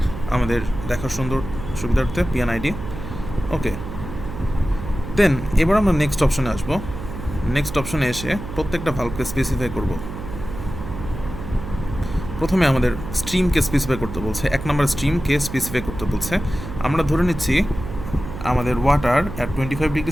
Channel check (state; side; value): noise; right; hum, 9 dB below the sound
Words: আমাদের দেখার সুবিধার্থে, PNID। ওকে, দেন এবার আমরা নেক্সট অপশনে আসবো। নেক্সট অপশনে এসে প্রত্যেকটা ভালভকে স্পেসিফাই করব। প্রথমে আমাদের স্ট্রিমকে স্পেসিফাই করতে বলছে, 1 নম্বর স্ট্রিমকে স্পেসিফাই করতে বলছে। আমরা ধরে নিচ্ছি আমাদের water at 25